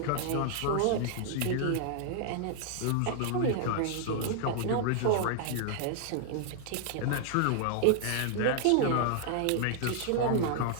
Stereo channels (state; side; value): different; both; correlation -0.01